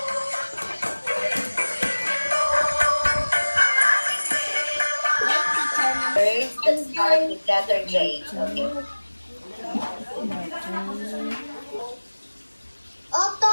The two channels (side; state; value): both; inverted; correlation -1.00